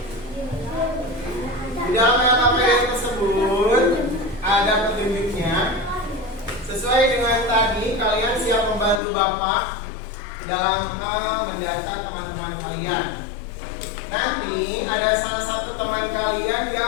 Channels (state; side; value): drops out; right; at 9.0 s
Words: Di dalam LKPD tersebut ada petunjuknya. Sesuai dengan tadi, kalian siap membantu Bapak dalam hal mendata teman-teman kalian. Nanti ada salah satu teman kalian